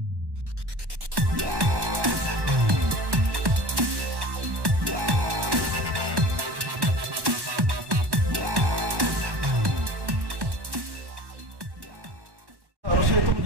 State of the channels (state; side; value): late; left; 1.1 ms